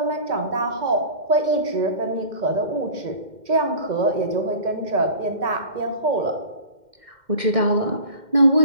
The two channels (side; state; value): left; late; 2.1 ms